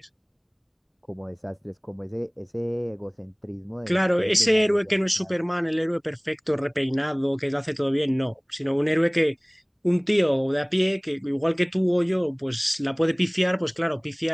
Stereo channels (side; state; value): both; identical; correlation 1.00